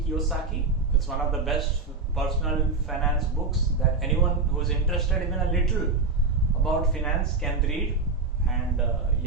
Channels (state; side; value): quieter; left; 4.0 dB